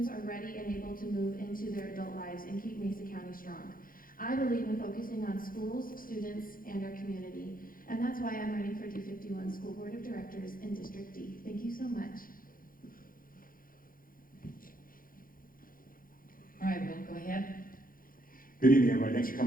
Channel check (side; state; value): right; late; 0.41 ms